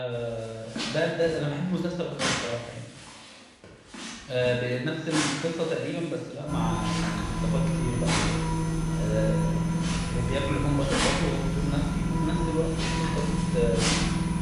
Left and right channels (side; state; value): both; identical; correlation 1.00